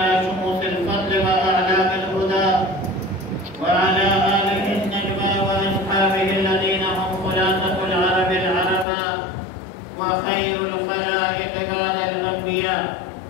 شموس الفضل وأعلام الهدى، وعلى آله النجوى وأصحابه الذين هم خلاصة العرب العرباء وخير الخلائق بعد الأنبياء.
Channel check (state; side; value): drops out; right; at 8.8 s